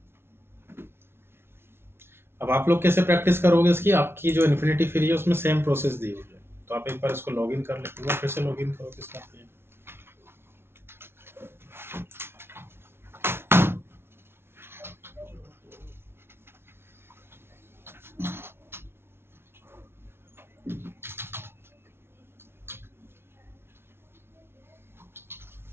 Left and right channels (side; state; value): left; late; 0.12 ms